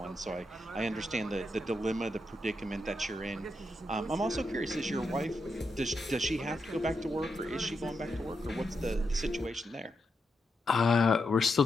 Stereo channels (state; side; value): normal; both; correlation 0.84